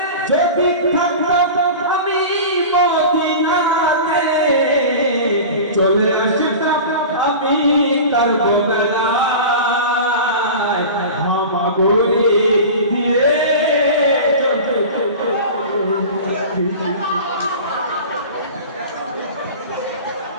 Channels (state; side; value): inverted; both; correlation -0.33